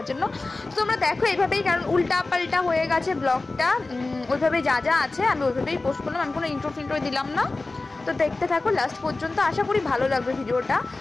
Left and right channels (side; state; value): right; quieter; 3.3 dB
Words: জন্য। তো তোমরা দেখো এইভাবেই, কারণ উল্টা পাল্টা হয়ে গেছে ব্লগটা, ওইভাবে যা যা আছে আমি ওইভাবেই পোস্ট করলাম, আমি কোনো ইন্ট্রো ফিন্ট্রো দিলাম না। তো দেখতে থাকো লাস্ট পর্যন্ত, আশা করি ভালো লাগবে ভিডিওটা।